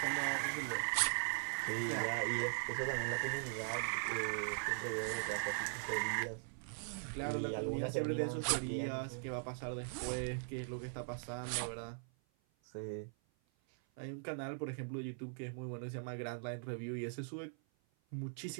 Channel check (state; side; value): silent; left; 51 dB below the other